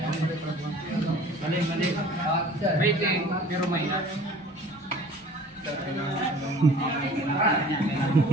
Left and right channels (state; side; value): normal; both; correlation 0.47